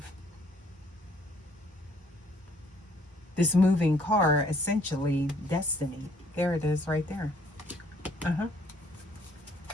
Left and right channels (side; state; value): both; normal; correlation 0.63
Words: this moving car, essentially destiny. There it is right there.